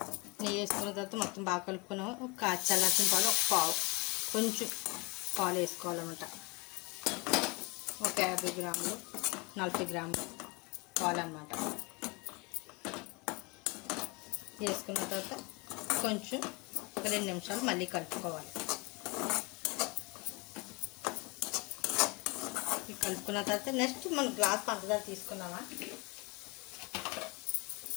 నెయ్యి వేసుకున్న తర్వాత మొత్తం బాగా కలుపుకున్నాము. ఒక కాచి చల్లార్చిన పాలు కొంచెం పాలు వేసుకోవాలన్నమాట. ఒక 50 గ్రాములు 40 గ్రాములు పాలు అన్నమాట. వేసుకున్న తర్వాత కొంచెం ఒక 2 నిమిషాలు మళ్ళీ కలుపుకోవాలి. కలుపుకున్న తర్వాత నెక్స్ట్ మనం గ్లాస్ పంచదార తీసుకున్నామా,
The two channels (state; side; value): quieter; right; 28.0 dB